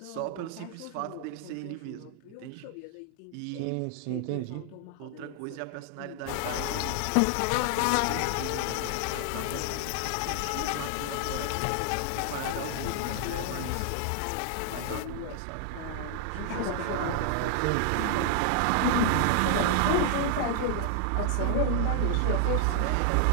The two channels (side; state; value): both; different; correlation 0.00